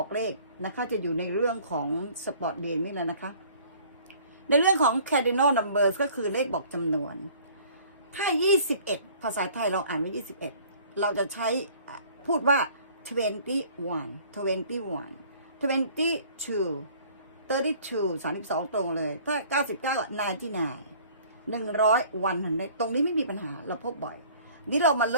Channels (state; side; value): inverted; both; correlation -0.53